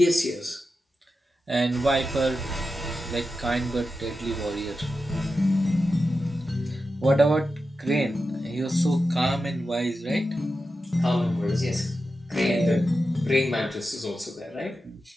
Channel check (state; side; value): normal; both; correlation 0.91